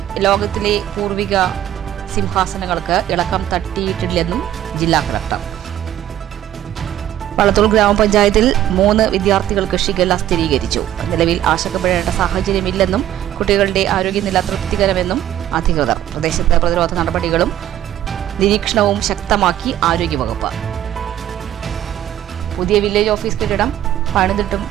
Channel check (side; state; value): left; quieter; 12.1 dB